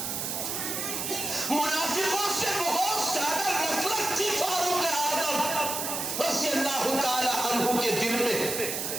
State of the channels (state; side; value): noise; right; hiss, 3 dB below the sound